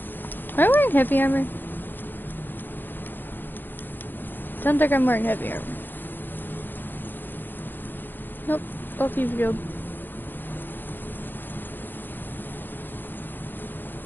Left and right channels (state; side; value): late; right; 0.093 ms